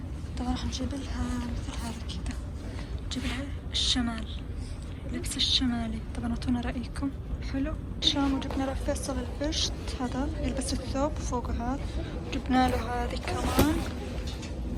طبعا راح نجيب لها مثل هذا كذا، نجيب لها الشمال، لبس الشمالي. طبعا اعطونا رأيكم. حلو. شام وجبنا له فيصل البشت، هذا يلبس الثوب فوق هذا، جبنا له هذه كمان.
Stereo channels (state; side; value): identical; both; correlation 1.00